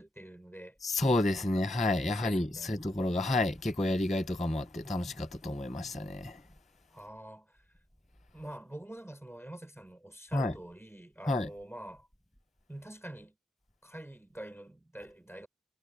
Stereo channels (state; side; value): normal; both; correlation 0.81